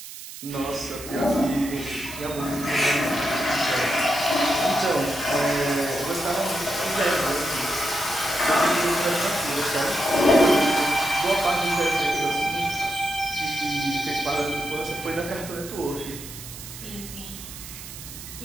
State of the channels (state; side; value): noise; right; hiss, 12 dB below the sound